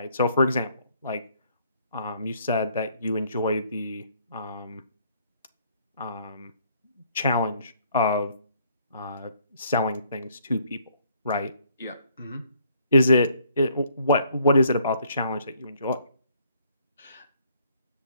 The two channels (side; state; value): both; inverted; correlation -0.65